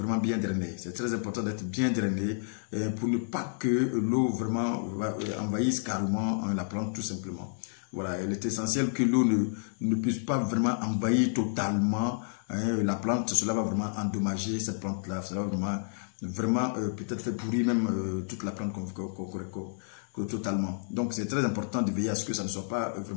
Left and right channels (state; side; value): silent; right; 58 dB below the other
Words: bien drainé. C'est très important d'être bien drainé pour ne pas que l'eau vraiment envahisse carrément la plante tout simplement. Voilà, il est essentiel que l'eau ne puisse pas vraiment envahir totalement la plante. Cela va vraiment endommager cette plante-là. Cela va vraiment peut-être faire pourrir même toute la plante totalement. Donc c'est très important de veiller à ce que ça ne soit pas